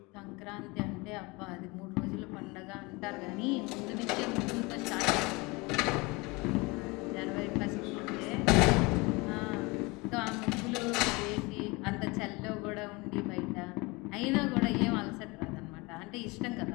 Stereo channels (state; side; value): quieter; right; 25.4 dB